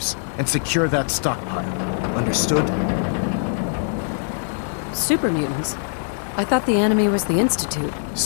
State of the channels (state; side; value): silent; right; digital silence